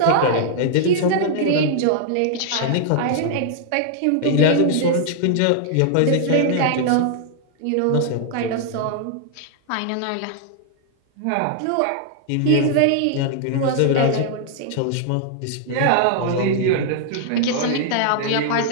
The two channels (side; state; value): both; different; correlation -0.01